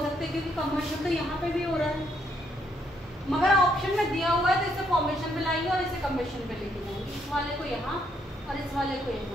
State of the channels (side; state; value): both; normal; correlation 0.73